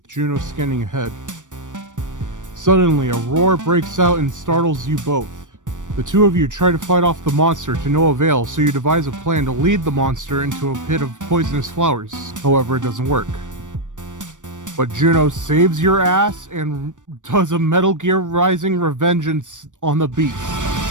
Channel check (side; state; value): left; late; 0.87 ms